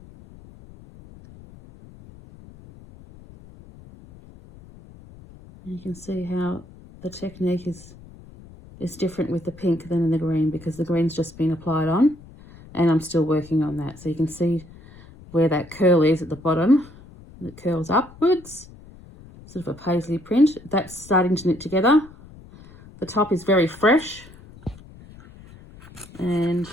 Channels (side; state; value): left; noise; rumble, 21 dB below the sound